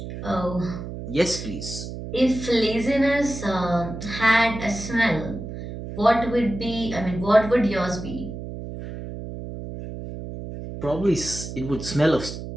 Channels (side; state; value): right; noise; hum, 9 dB below the sound